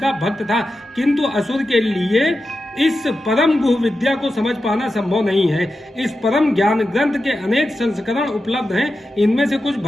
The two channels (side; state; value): both; normal; correlation 0.91